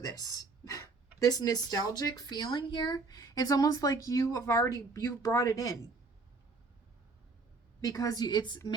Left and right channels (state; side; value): quieter; left; 3.9 dB